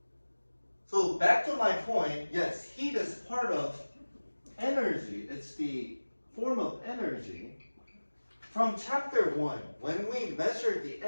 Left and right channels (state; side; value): inverted; both; correlation -1.00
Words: so back to my point, yes, heat is part of energy. It's the form of energy. From chapter 1, when we measure the